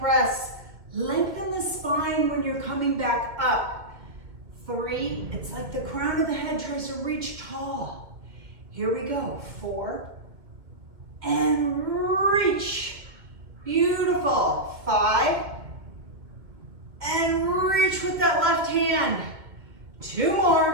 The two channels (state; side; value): late; left; 2.2 ms